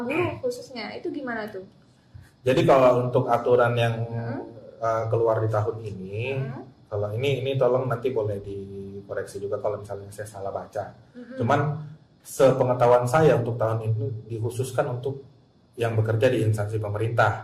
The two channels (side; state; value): both; identical; correlation 1.00